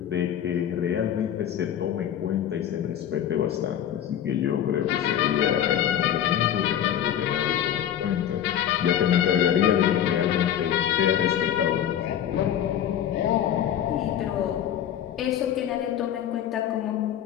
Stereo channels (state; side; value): quieter; right; 10.3 dB